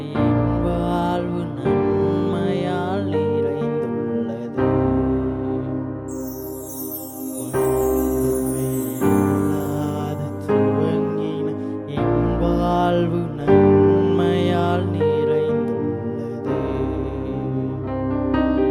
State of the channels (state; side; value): identical; both; correlation 1.00